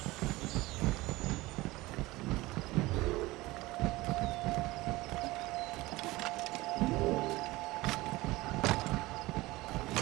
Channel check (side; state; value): left; quieter; 20.0 dB